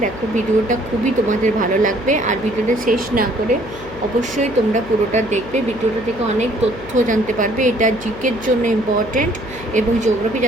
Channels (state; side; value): noise; left; hum, 15 dB below the sound